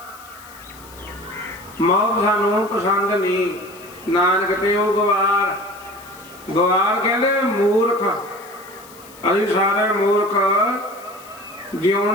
ਮੌਤ ਸਾਨੂੰ ਪਸੰਦ ਨਹੀਂ। ਨਾਨਕ ਤੇ ਉਹ ਗਵਾਰ ਕਹਿੰਦੇ ਮੂਰਖ। ਅਸੀਂ ਸਾਰੇ ਮੂਰਖ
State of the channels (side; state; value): left; noise; hiss, 21 dB below the sound